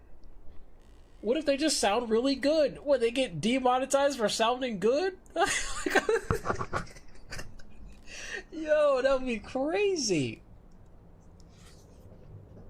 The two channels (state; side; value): identical; both; correlation 1.00